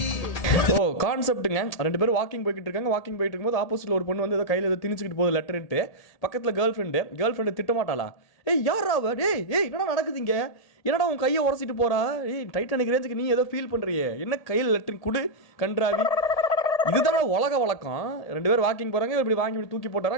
ஓ கான்செப்ட்டுங்க. 2 பேரும் வாக்கிங் போய்கிட்டு இருக்காங்க. வாக்கிங் போயிட்டு இருக்கும்போது ஆப்போசிட்ல ஒரு பொண்ணு வந்து ஏதோ கையில் ஏதோ திணிச்சுக்கிட்டு போகுது லெட்டர்ன்ட்டு. பக்கத்தில் கேர்ள் ஃப்ரெண்டு திட்ட மாட்டாளா? ஏய் யாரா அவ? ஏய் என்னடா நடக்குதுங்க? என்னடா உன் கையை உரசிட்டு போறா? ஏய் டைட்டானிக் ரேஞ்சுக்கு நீ ஏதோ ஃபீல் பண்றியே, என்ன கையில் லெட்டர் குடு கன்றாவி. இதுதான் உலக வழக்கம். 2 பேர் வாக்கிங் போறாங்க, இப்படி வாங்கி இப்படி தூக்கி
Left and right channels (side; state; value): right; late; 1.8 ms